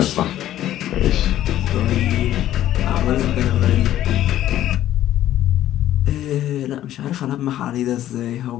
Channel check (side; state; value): right; quieter; 12.7 dB